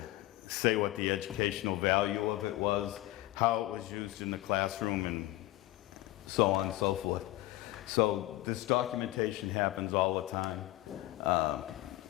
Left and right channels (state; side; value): quieter; right; 17.4 dB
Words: say what the educational value of it was, how it was used in the classroom, and so on and so forth. So this documentation happens all the time.